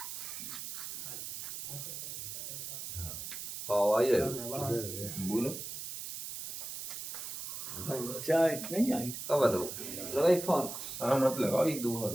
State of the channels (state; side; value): noise; right; hiss, 7 dB below the sound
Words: आई रहे बोलो चाय नहीं आई कब बताओ लगाई फोन हाँ मत लगाओ एक दो बार